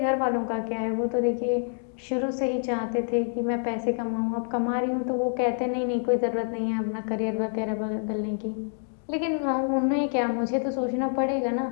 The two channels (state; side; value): silent; right; 60 dB below the other